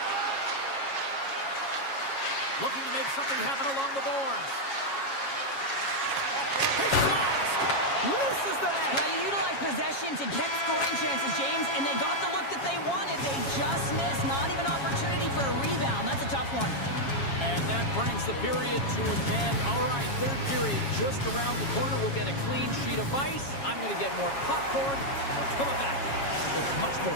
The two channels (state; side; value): late; right; 7.3 ms